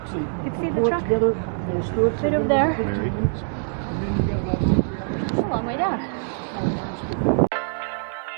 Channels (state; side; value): silent; left; digital silence